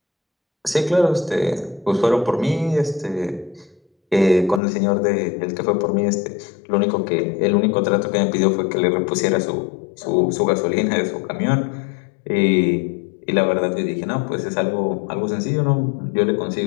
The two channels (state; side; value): drops out; right; at 4.6 s